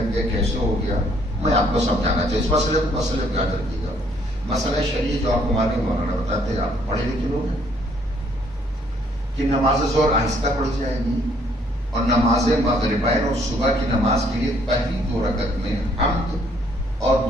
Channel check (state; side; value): normal; both; correlation 0.65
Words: گئے کیسے ہو گیا. میں آپ کو سمجھانا چاہیے اس مسئلے کو یاد رکھیے گا. مسئلہ شریعت جو آپ کو ہمارے مولانا بتاتے ہیں آپ پڑھے لکھے لوگ ہیں کہ نماز ظہر آہستہ پڑھی جائے گی اور نماز مغربین اور صبح کی نماز کے لیے پہلی 2 رکعت میں حمد اور